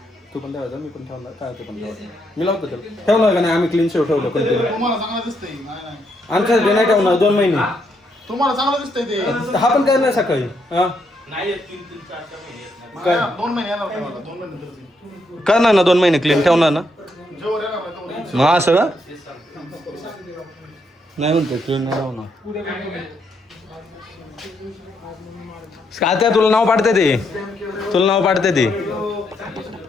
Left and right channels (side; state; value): both; normal; correlation 0.76